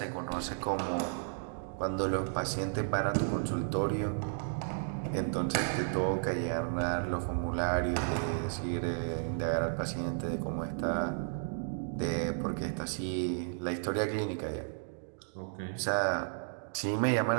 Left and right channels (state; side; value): silent; left; digital silence